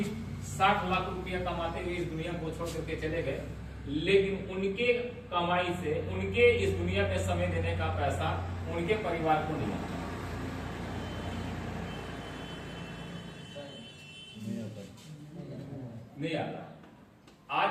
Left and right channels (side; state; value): both; identical; correlation 1.00